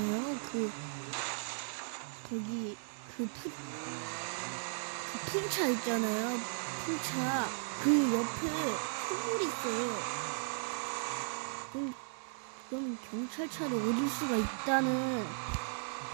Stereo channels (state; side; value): silent; left; digital silence